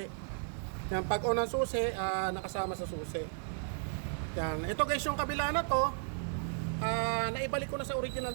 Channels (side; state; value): left; silent; digital silence